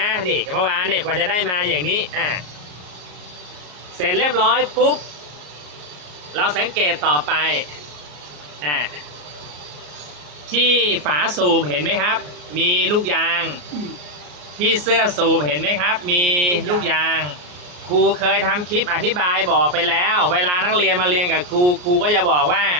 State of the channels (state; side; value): late; left; 34 ms